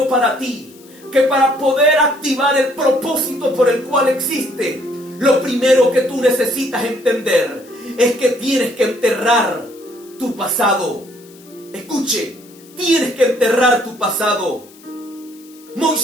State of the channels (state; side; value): noise; left; hiss, 25 dB below the sound